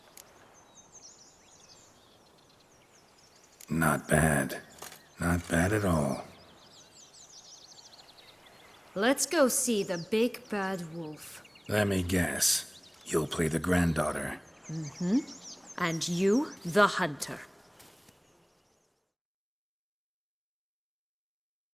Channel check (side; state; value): both; identical; correlation 1.00